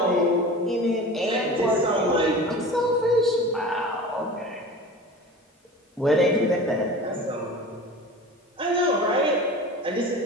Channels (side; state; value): both; normal; correlation 0.36